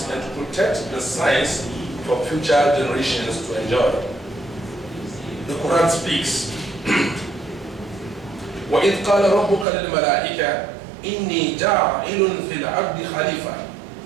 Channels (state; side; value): drops out; left; at 9.7 s